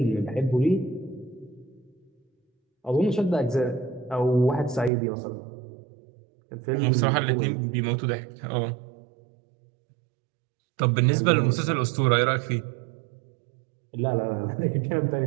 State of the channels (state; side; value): drops out; left; at 4.9 s